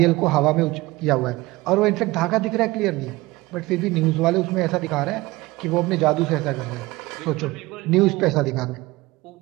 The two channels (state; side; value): quieter; left; 20.5 dB